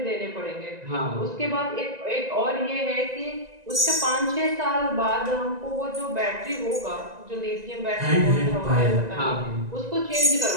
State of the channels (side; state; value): left; late; 1.9 ms